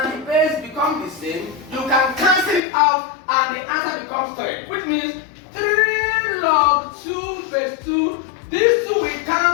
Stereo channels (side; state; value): right; drops out; at 2.6 s